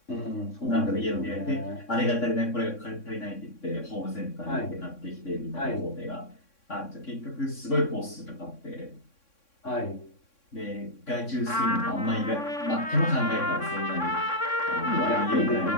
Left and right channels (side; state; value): right; late; 3.6 ms